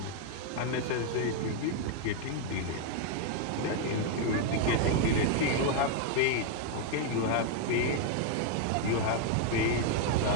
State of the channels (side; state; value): both; different; correlation 0.01